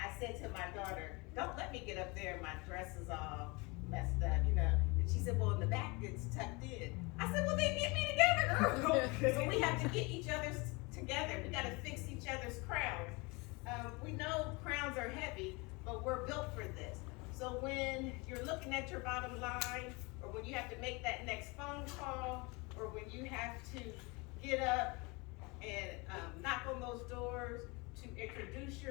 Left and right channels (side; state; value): right; quieter; 27.2 dB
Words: said to my daughter, don't let me get up there and my dress is all messed up, you know. And she said, well, in the back it's tucked in. I said, well, then get me together, girl. So we have to get each other's together. We got to fix each other's crowns. We know crowns are heavy, but we're built for this. So when you're looking at your bottom line, or when you have to make that next phone call, or when you have to get up and knock on those doors to introduce